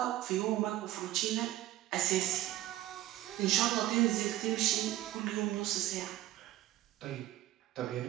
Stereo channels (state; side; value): quieter; left; 14.6 dB